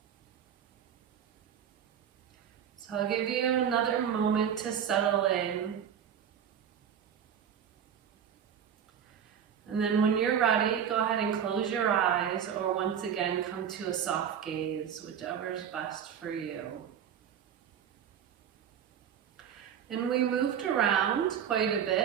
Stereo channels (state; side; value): quieter; left; 8.6 dB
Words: So I'll give you another moment to settle in. And then when you're ready, go ahead and close your eyes, or once again, come to a soft gaze, whichever is best for you. And we moved around quite a